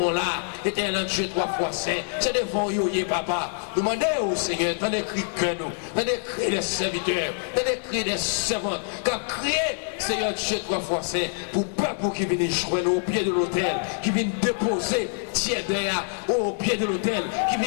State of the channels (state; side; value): silent; right; 61 dB below the other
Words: là, éternel Dieu, trois fois saint, c'est devant vous, papa. Demandez au Seigneur, dans les cris que nous, dans les cris des serviteurs, dans les cris des servantes, quand crier, Seigneur Dieu, trois fois saint, pour peuple qui vient joindre au pied de l'autel, qui vient déposer, tiens derrière, au pied de l'autel, qui